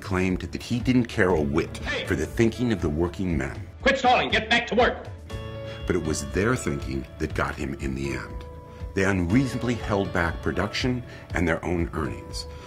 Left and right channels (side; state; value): both; identical; correlation 1.00